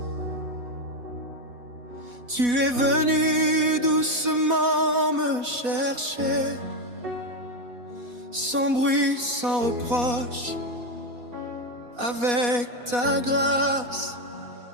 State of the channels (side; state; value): left; late; 4.1 ms